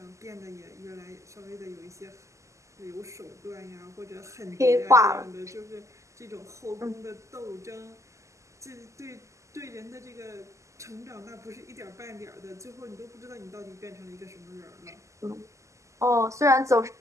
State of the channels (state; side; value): late; left; 0.15 ms